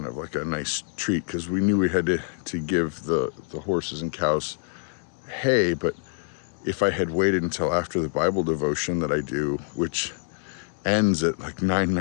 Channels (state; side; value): silent; right; 61 dB below the other